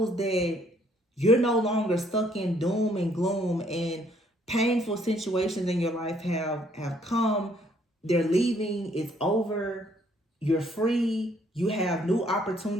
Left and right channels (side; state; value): both; normal; correlation 0.65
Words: that you're no longer stuck in doom and gloom, and painful situations in your life have come. They're leaving. It's over. You're free. You have new